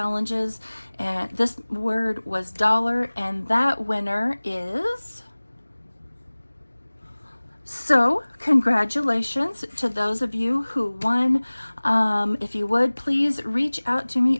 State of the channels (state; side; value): inverted; both; correlation -1.00